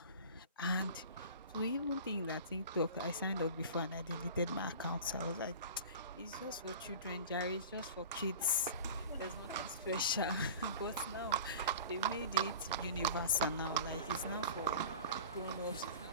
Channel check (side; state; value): both; inverted; correlation -0.38